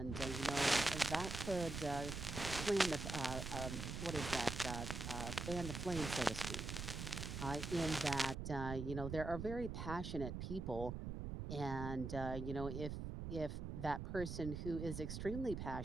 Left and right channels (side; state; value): right; noise; rumble, 5 dB below the sound